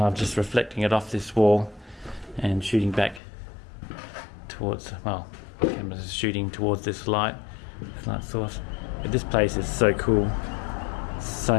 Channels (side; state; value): right; drops out; at 3.2 s